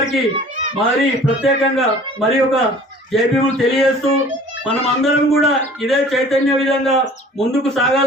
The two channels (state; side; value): normal; both; correlation 0.48